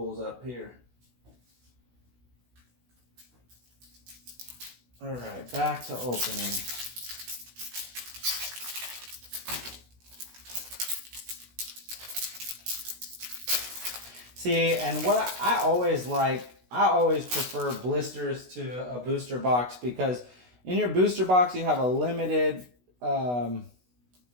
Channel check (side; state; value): left; late; 16 ms